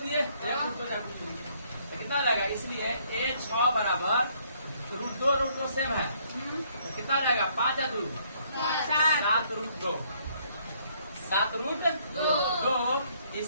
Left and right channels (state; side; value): inverted; both; correlation -0.67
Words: दिए कितना हो जाएगा, इसलिए a 6 बराबर रूट 2 सेम है तो कितना हो जाएगा 5 या 2 7 रूट 2 7 रूट 2,